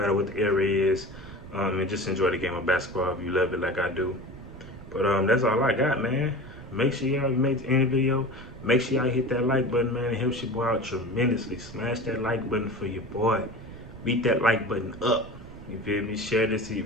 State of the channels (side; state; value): right; noise; rumble, 16 dB below the sound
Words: what the era is, and just enjoy the game of basketball if you love it like I do. But that's all I got, man. Make sure y'all make any video. Make sure y'all hit that like button, man. It helps your boy out tremendously. Smash that like button for your boy. Beat that like button up. You feel me? Share this to your